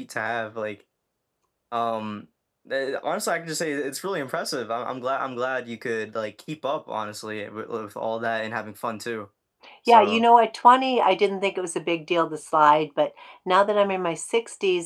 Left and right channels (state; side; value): identical; both; correlation 1.00